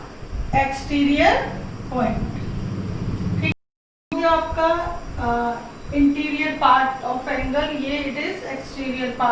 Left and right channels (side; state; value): both; identical; correlation 1.00